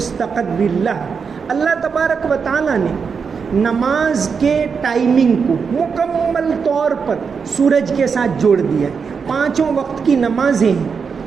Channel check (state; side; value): quieter; left; 5.8 dB